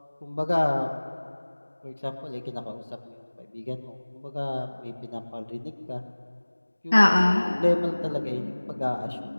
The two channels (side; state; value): both; inverted; correlation -1.00